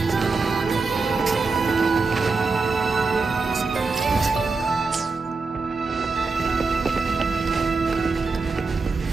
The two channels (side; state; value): left; quieter; 4.2 dB